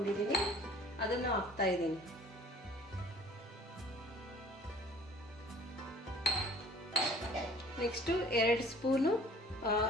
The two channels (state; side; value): normal; both; correlation 0.50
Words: ಅದನ್ನು ಹಾಕ್ತಾ ಇದ್ದೀನಿ. ನೆಕ್ಸ್ಟು 2 ಸ್ಪೂನು